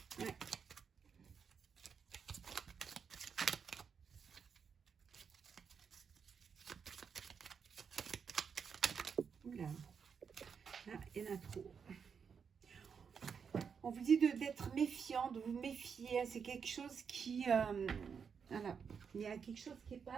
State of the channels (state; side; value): quieter; left; 6.5 dB